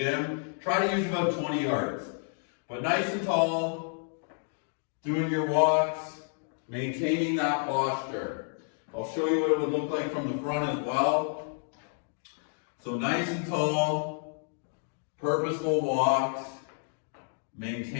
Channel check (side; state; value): right; silent; 58 dB below the other